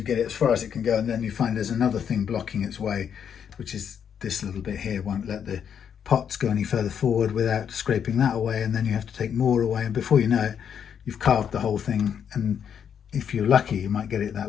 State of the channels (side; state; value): right; quieter; 8.1 dB